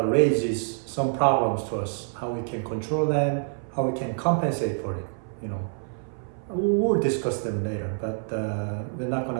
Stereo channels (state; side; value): silent; left; 58 dB below the other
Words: raises some problems to us, how we can control them, how we can compensate for it. We'll discuss them later, but we're not going